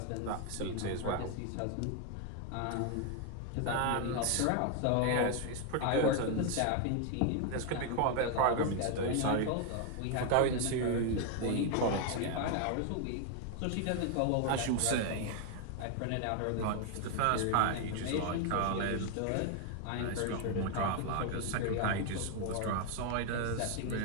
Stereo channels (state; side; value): different; both; correlation 0.00